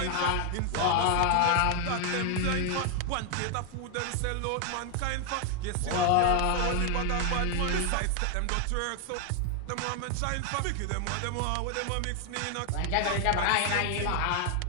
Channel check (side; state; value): both; different; correlation 0.00